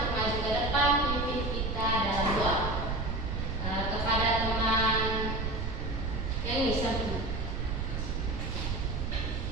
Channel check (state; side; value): noise; right; rumble, 2 dB below the sound